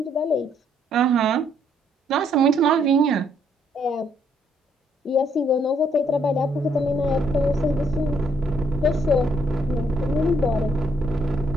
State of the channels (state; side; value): normal; both; correlation 0.69